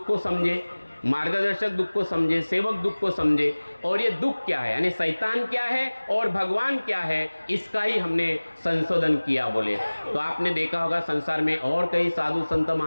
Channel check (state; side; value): inverted; both; correlation -1.00